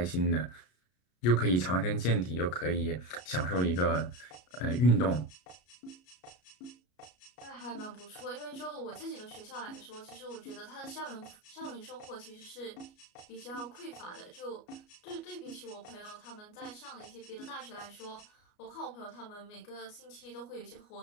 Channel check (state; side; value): late; right; 33 ms